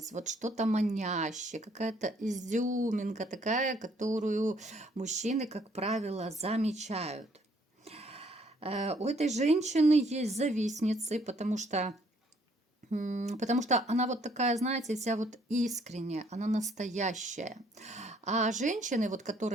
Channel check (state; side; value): normal; both; correlation 0.65